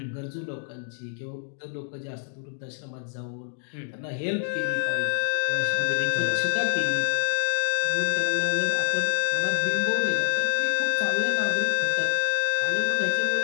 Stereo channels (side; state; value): right; silent; digital silence